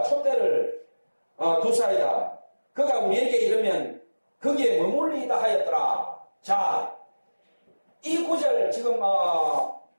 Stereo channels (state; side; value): inverted; both; correlation -1.00